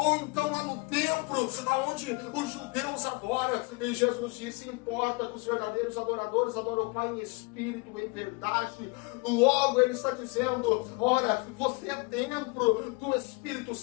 então lá no templo, aonde os judeus adoram? E Jesus disse: importa que os verdadeiros adoradores adoram o Pai em espírito e em verdade. Logo ele está dizendo: ora, você é templo do Espírito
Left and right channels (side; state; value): right; quieter; 28.4 dB